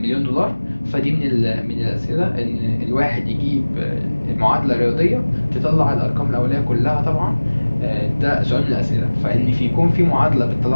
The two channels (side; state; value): both; inverted; correlation -1.00